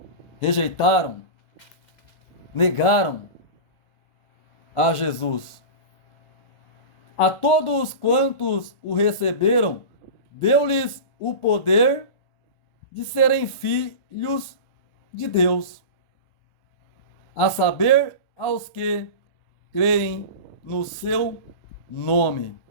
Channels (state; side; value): late; right; 1.4 ms